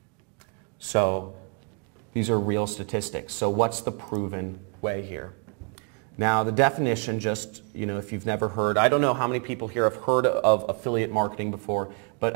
So these are real statistics. So what's the proven way here? Now the definition, just, you know, if you've never heard, I don't know how many people here have heard of affiliate marketing before, but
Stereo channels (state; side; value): quieter; left; 39.4 dB